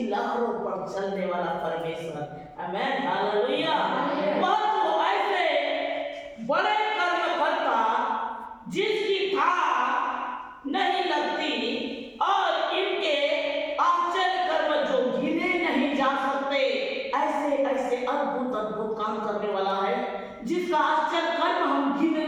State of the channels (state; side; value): identical; both; correlation 1.00